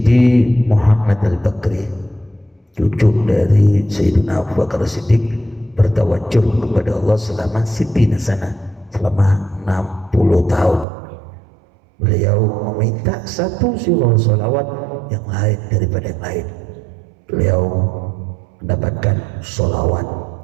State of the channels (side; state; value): left; drops out; at 10.9 s